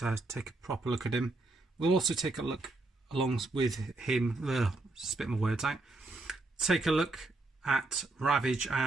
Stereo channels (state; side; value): quieter; left; 3.0 dB